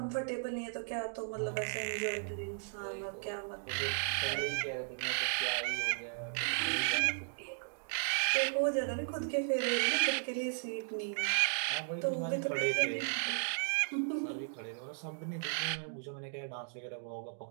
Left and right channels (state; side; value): silent; left; digital silence